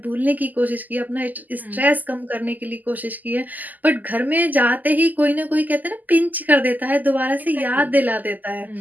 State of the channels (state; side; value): late; left; 0.082 ms